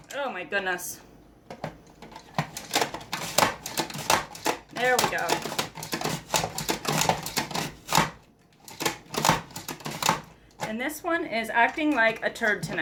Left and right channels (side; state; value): both; identical; correlation 1.00